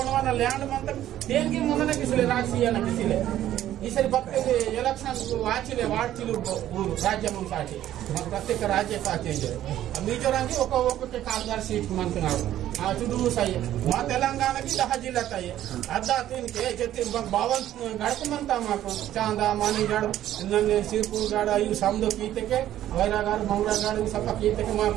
लैंड मत देनकी मनने किसले राजसीय न किसले ಈ ಸರಿ ಬರ್ತದೆ ಎಲೆಕ್ಷನ್ ವಾಚಿಲೆ ವಾಡ್ತಿಲು ಊರು ರಾಜ್ಯ ಮುಂಸಾಟಿ ಪ್ರತ್ಯೇಕ ರಾಜ್ಯ ಸಾಚೇಂಜೆ ಮಿಜೋರಾಂಗಿ ఒక్కొక్క కాల్దార్ సీట్ మంటున్నారు ఆ చుడూ సై మా తెలంగాణకి 10 జిల్లా తాయి అద్దా తిన్కే చెత్తి బావన్ గడకమంతా మాకు చాందా మానిగడ నన్నే సిర్పూర్ గడ ఈ సమదో కీతకే వైరాగారు మంగళగారు సప కీతకే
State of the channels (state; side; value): quieter; left; 12.5 dB